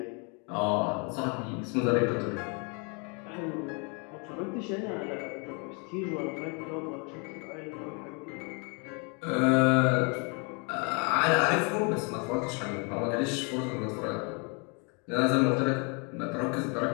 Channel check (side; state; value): right; quieter; 34.3 dB